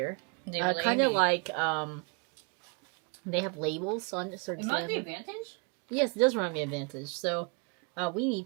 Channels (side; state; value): left; quieter; 33.0 dB